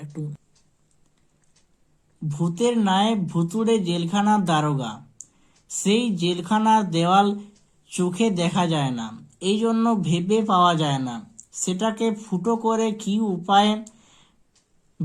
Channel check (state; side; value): identical; both; correlation 1.00